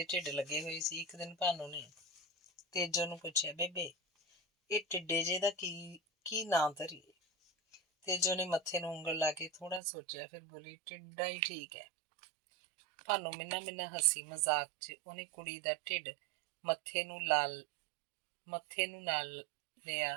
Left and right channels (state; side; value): drops out; left; at 9.8 s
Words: ਢਿੱਡ ਲੱਗੇ ਹੋਏ ਸੀ। ਇੱਕ ਦਿਨ ਭਾਨੋ ਨੇ ਤੇਜੋ ਨੂੰ ਪੁੱਛਿਆ, ਬੇਬੇ ਇਹ ਟਿੱਡੇ ਜੇ ਦਾ ਕੀ ਨਾਂ ਧਰੀਏ? ਤੇਜੋ ਨੇ ਮੱਥੇ ਨੂੰ ਉਂਗਲ ਲਾ ਕੇ ਥੋੜਾ ਸੋਚਿਆ, ਫਿਰ ਬੋਲੀ, ਟਿੱਡਾ ਹੀ ਠੀਕ ਹੈ। ਭਾਨੋ ਮਿੰਨਾ ਹੱਸੀ। ਮਜ਼ਾਕ 'ਚ ਉਹਨੇ ਕੁੜੀ ਦਾ ਢਿੱਡ ਮੱਥੇ ਨੂੰ ਨਾਲ